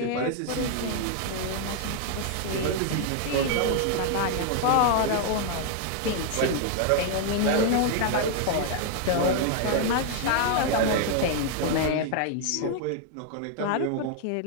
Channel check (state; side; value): different; both; correlation 0.00